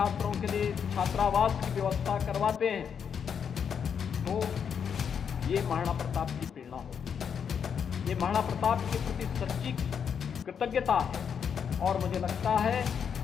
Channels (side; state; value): right; quieter; 7.3 dB